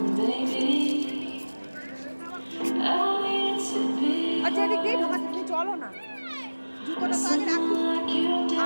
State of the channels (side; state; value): both; inverted; correlation -1.00